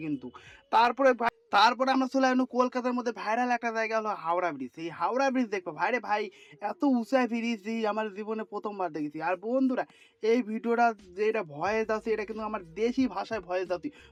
কিন্তু। তারপরে আমরা চলে আসলাম কলকাতার মধ্যে ভাইরাল একটা জায়গা হলো হাওড়া ব্রিজ। এই হাওড়া ব্রিজ দেখবো ভাইরে ভাই, এত উঁচা ব্রিজ এই আমার জীবনে প্রথমবার দেখেছি। আর বন্ধুরা এই ভিডিওটা যেটা ভয়েস আছে, এটা কিন্তু আমার দেশি ভাষায় ভয়েস আছে।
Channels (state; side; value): identical; both; correlation 1.00